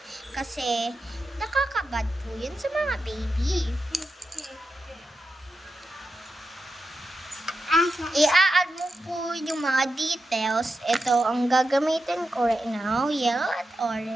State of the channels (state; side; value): normal; both; correlation 0.89